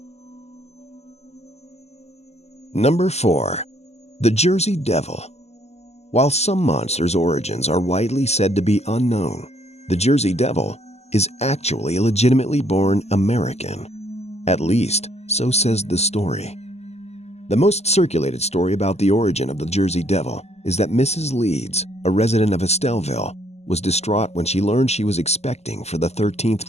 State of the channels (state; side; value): late; right; 0.31 ms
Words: Number 4. The Jersey Devil. While some monsters' origins are widely said to be unknown, the Jersey Devil is actually a legitimately born American. At least, so says the story. The most circulated story about the origin of the Jersey Devil is that Mrs. Leeds, a resident of Estelleville, was distraught when she learned she was expecting for the 13th